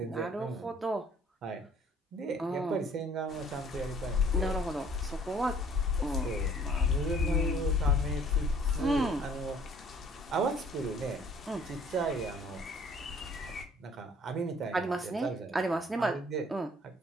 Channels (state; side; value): normal; both; correlation 0.56